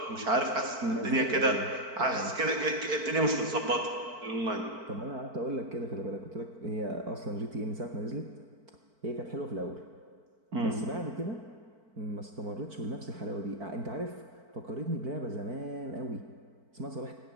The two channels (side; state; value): left; late; 4.5 ms